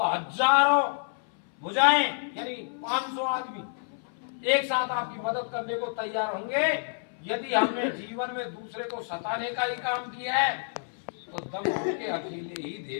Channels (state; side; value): silent; right; 59 dB below the other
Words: हजारों भुजाएं यानी 500 आदमी एक साथ आपकी मदद करने को तैयार होंगे। यदि हमने जीवन में दूसरे को सताने का ही काम किया है तो दम होके अकेले ही